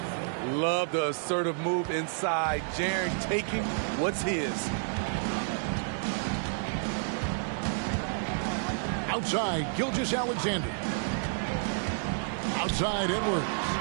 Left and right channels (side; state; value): left; silent; digital silence